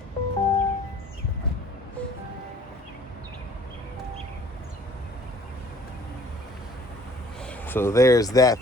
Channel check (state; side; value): normal; both; correlation 0.53